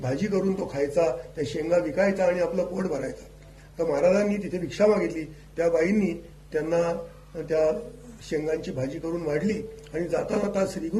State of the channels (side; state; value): both; identical; correlation 1.00